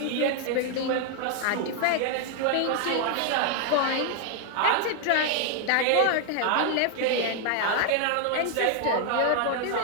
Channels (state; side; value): different; both; correlation 0.00